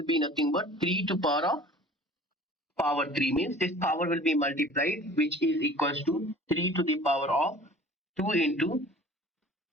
be nothing but 3 to power 3 means this power will be multiplied, which is equals to 3 to the power of 2 into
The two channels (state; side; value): normal; both; correlation 0.45